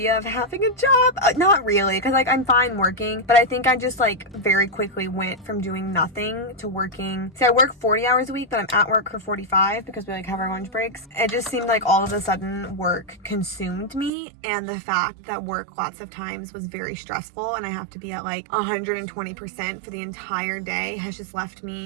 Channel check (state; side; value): drops out; left; at 14.1 s